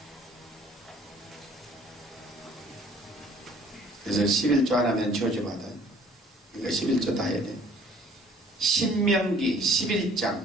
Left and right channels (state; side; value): normal; both; correlation 0.56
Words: 그래서 11조 안 하면 저주 받아. 그러니까 11조 다 해야 돼. 신명기